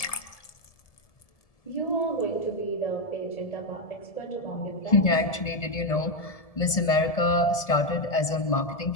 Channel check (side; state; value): right; late; 1.7 ms